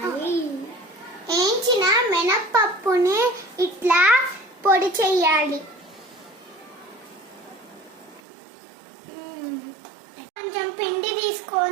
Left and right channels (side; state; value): left; drops out; at 8.2 s